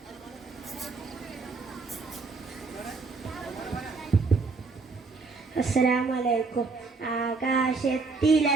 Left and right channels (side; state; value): left; quieter; 4.2 dB